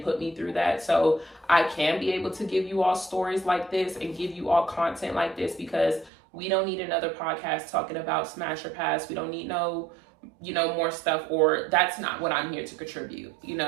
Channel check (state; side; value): drops out; left; at 6.1 s